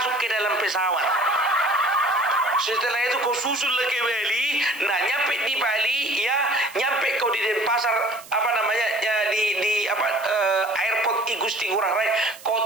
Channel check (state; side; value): noise; right; hiss, 19 dB below the sound